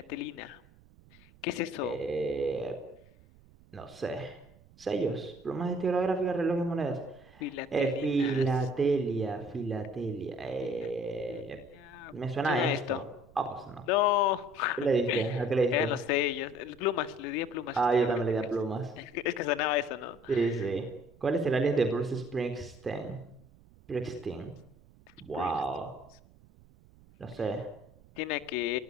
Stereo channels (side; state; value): right; noise; rumble, 26 dB below the sound